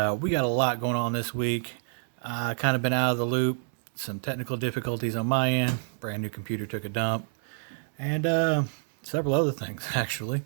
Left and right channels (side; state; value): left; silent; 59 dB below the other